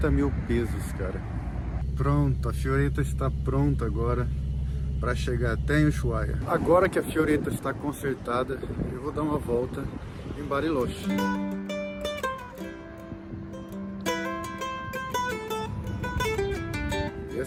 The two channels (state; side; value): identical; both; correlation 1.00